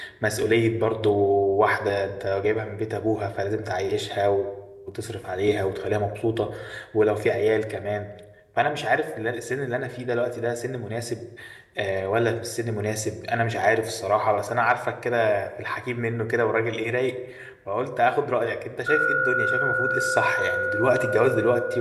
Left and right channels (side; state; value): both; identical; correlation 1.00